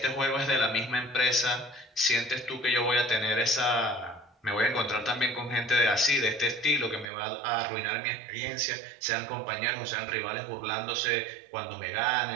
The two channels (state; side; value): drops out; left; at 7.1 s